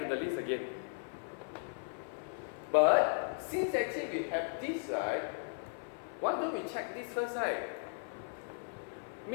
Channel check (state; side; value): silent; right; 53 dB below the other